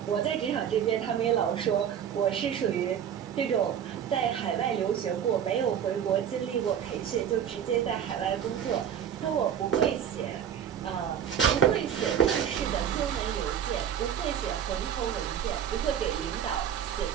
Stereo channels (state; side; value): quieter; left; 9.0 dB